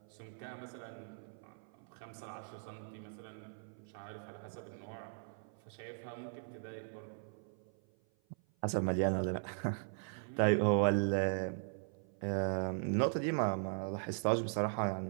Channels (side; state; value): left; silent; 52 dB below the other